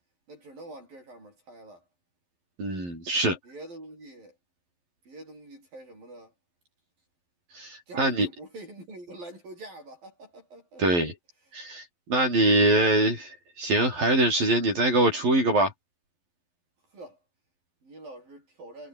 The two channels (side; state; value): left; late; 11 ms